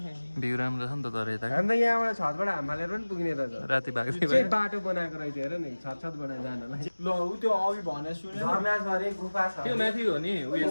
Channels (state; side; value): inverted; both; correlation -1.00